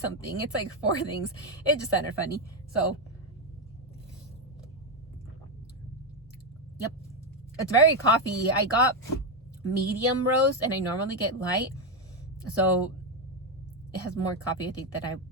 something. It's like 4 things. It just sounded funny. So yep, it's very coffee. I got medium roast and I normally get light, so it has more coffee, I think, that I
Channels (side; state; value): both; normal; correlation 0.06